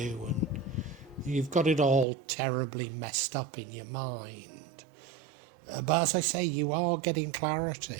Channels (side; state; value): left; drops out; at 2.1 s